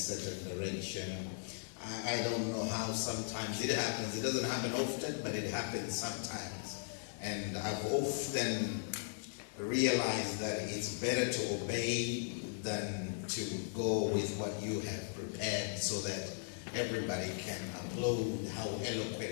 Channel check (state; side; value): silent; right; 53 dB below the other